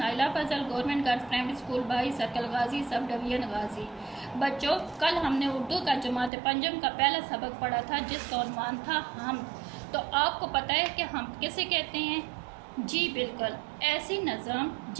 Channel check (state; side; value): drops out; left; at 6.3 s